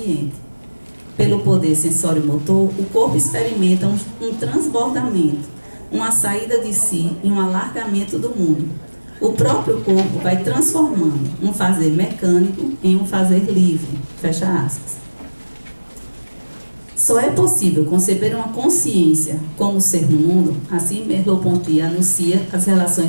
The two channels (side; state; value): both; inverted; correlation -1.00